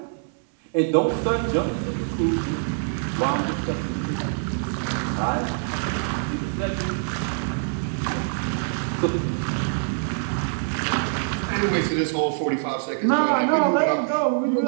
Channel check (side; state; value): left; silent; digital silence